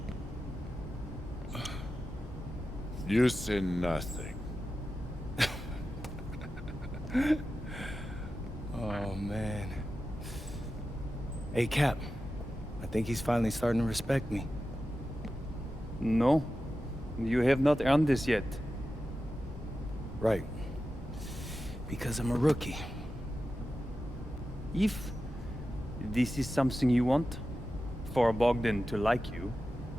You say nothing. Oh, man. Hey, Cap. I think he's finally starting to respect me. No, you have not earned this yet. Right. Because I'm a rookie. If this is something you want, for Bogdan to like you,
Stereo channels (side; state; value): both; normal; correlation 0.92